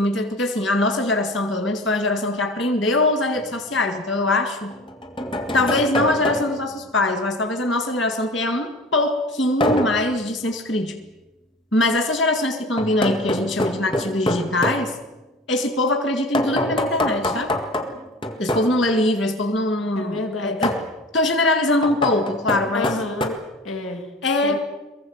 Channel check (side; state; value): both; normal; correlation 0.39